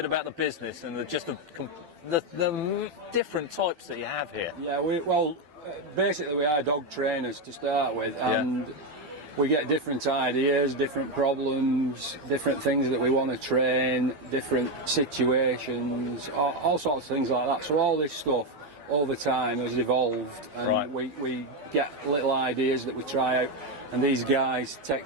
about the business and the different types that you have here. Yeah, basically we are dog trainers to start with, and we get different ideas, different problems, different things that we want to train, different situations, all sorts of things like that. So all this stuff over time has evolved, and we get little ideas that we try out, and these guys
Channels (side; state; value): left; late; 12 ms